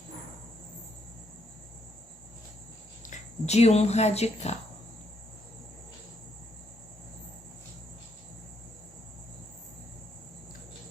de um radical.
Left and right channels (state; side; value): normal; both; correlation 0.75